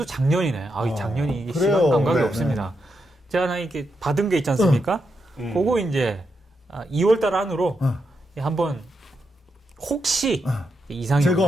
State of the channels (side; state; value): both; normal; correlation 0.83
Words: 작년이네. 이 작년이 이게 그래요. 시간 감각이 네, 없습니다. 제가 하나 이렇게 받은 게 있지 않습니까? 그거 이제 2월달 안으로 한번 혹시 이상이